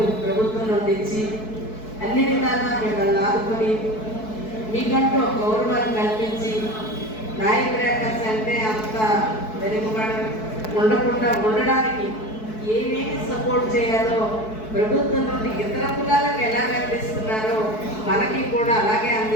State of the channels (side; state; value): right; late; 4.6 ms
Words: ప్రభుత్వం నుండి ఇచ్చి అన్ని విధాలా మిమ్మల్ని ఆదుకొని మీకంటూ ఒక గౌరవాన్ని కల్పించి నాయకురాకర్స్ అంటే అంత వెనుకబడి ఉండకుండా ఉండడానికి ఏమేమి సపోర్ట్ చేయాలో ప్రభుత్వం నుండి ఇతర కులాలకు ఎలా అందిస్తున్నారో మనకి కూడా అలాగే